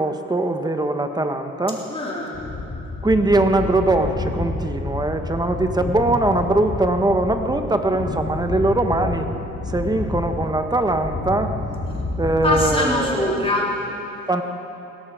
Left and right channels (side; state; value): both; normal; correlation 0.63